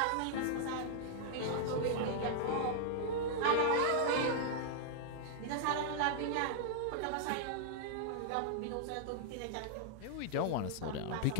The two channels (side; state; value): both; different; correlation -0.01